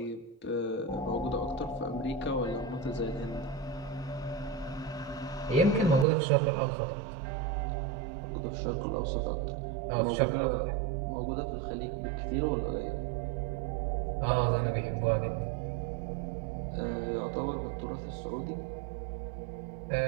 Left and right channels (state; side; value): drops out; left; at 6.1 s